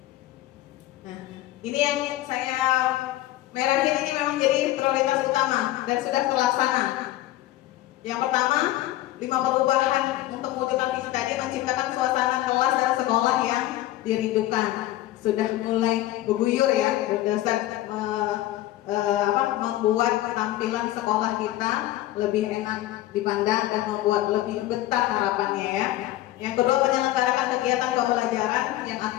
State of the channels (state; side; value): quieter; right; 15.3 dB